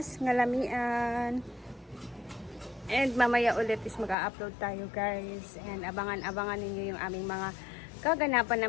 ngalamian. And mamaya ulit is mag-upload tayo guys. And abangan-abangan ninyo yung aming mga kaganapan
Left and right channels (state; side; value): drops out; right; at 4.2 s